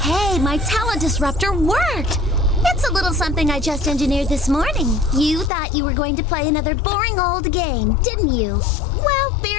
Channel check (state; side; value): drops out; right; at 5.5 s